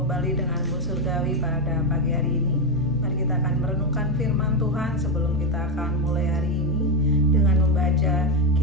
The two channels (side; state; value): both; normal; correlation 0.08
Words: kembali denganmu surgawi pada pagi hari ini. Mari kita akan merenungkan firman Tuhan sebelum kita akan mulai hari ini dengan membaca